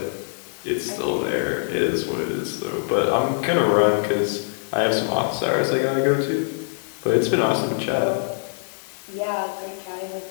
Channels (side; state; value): right; silent; 63 dB below the other